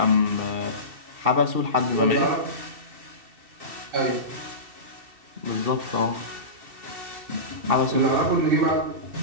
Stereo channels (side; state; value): left; late; 2.7 ms